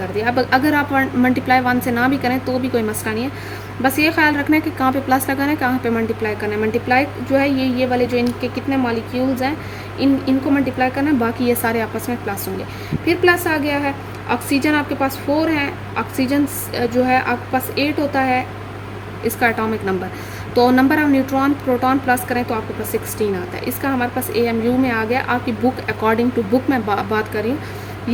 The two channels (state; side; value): identical; both; correlation 1.00